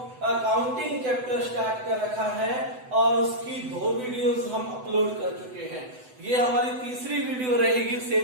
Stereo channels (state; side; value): late; left; 7.9 ms